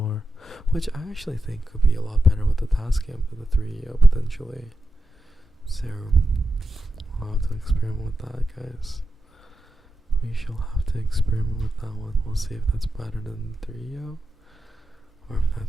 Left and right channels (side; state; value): both; normal; correlation 0.88